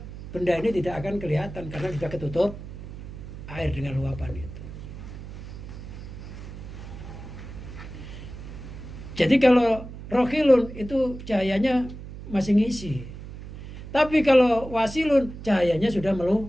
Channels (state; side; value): noise; right; hum, 12 dB below the sound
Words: benda ini tidak akan kelihatan karena sudah ketutup air dengan luapan itu. Jadi kalau rohilun itu cahayanya masih ngisi. Tapi kalau wasilun cahayanya sudah